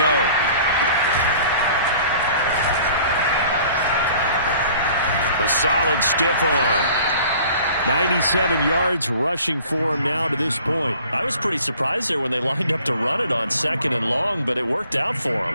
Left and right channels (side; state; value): both; inverted; correlation -0.50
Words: A solid stiff arm. 97 yards rushing for him now to this point. I was pretty surprised there when they lined up to run it on 2nd and long, but it worked out for